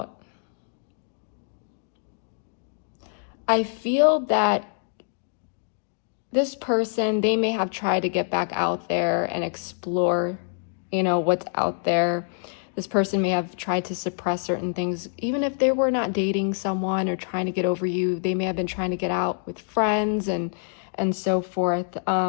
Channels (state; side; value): silent; right; digital silence